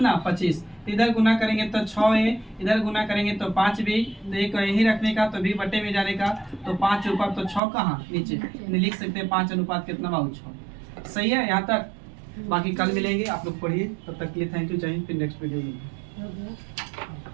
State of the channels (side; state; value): left; drops out; at 7.6 s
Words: 25, इधर गुना करेंगे तो 6 है, इधर गुना करेंगे तो 5 भी, तो एक यही रखने का तो भी बटे में जाने का तो 5 ऊपर तो 6 कहाँ नीचे, लिख सकते हैं 5 अनुपात कितना बाबू 6। सही है यहाँ तक, बाकी कल मिलेंगे, आप लोग पढ़िए, तब तक के लिए थैंक यू, चाहिए फिर नेक्स्ट वीडियो में।